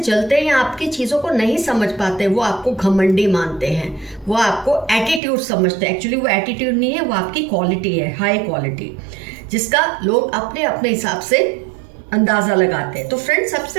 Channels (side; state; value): left; drops out; at 5.2 s